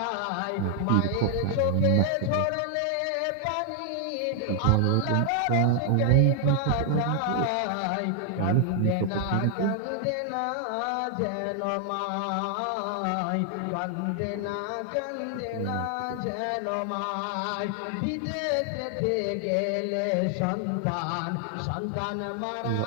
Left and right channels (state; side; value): different; both; correlation 0.00